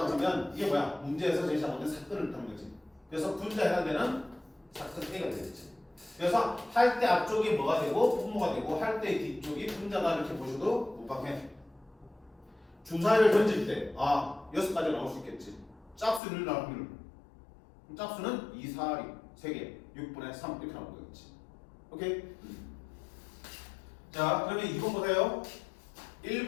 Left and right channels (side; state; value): right; drops out; at 16.2 s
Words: 하면 이게 뭐야? 문제에서 제일 잘못된 사건을 뜻하는 거지. 그래서 분자에 해당되는 사건 A가 되겠지. 그래서 할 때 앞쪽이 뭐가 되고 분모가 되고 할 때 뒤쪽이 분자다 이렇게 보셔도 무방해. 주사위를 던질 때 6가지 나올 수 있겠지. 짝수를 나올 확률. 짝수는 2, 4, 3개 6분의 3 이렇게 나오는 거겠지. 오케이? 자 그러면 2번 보세요.